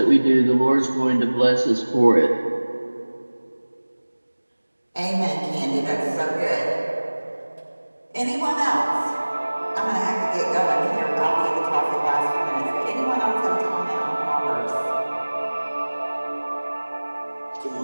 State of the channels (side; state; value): both; inverted; correlation -1.00